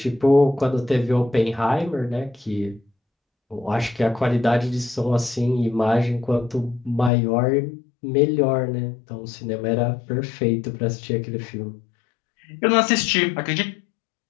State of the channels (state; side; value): drops out; right; at 7.1 s